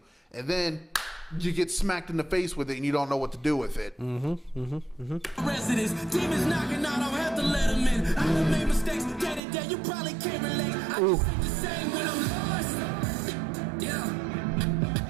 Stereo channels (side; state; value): left; drops out; at 9.4 s